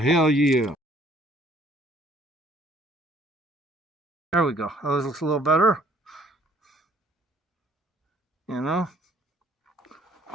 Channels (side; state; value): both; normal; correlation 0.60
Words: yeah. There we go. Oh, this looks a little better. You know?